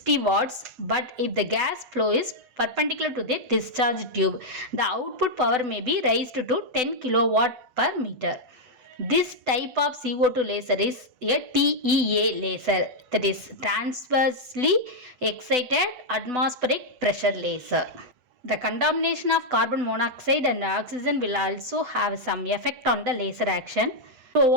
watts, but if the gas flow is perpendicular to the discharge tube, the output power may be raised to 10 kilowatt per meter. This type of CO2 laser is a TEA laser, that is transversely excited atmospheric pressure laser. The contamination of carbon monoxide and oxygen will also have some effect on the laser action. To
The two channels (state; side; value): late; left; 8.0 ms